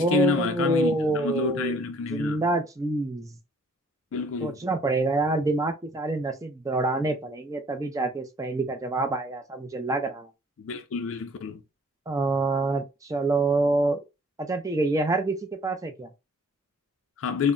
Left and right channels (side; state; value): both; normal; correlation 0.56